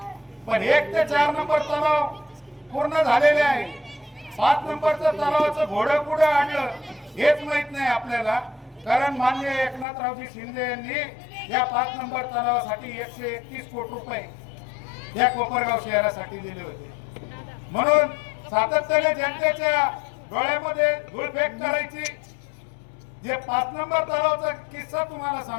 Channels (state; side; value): drops out; right; at 9.9 s